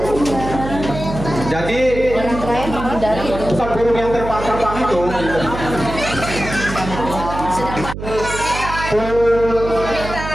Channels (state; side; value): noise; right; hum, 8 dB below the sound